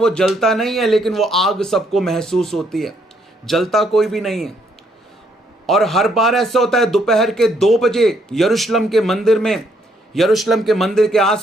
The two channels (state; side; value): normal; both; correlation 0.71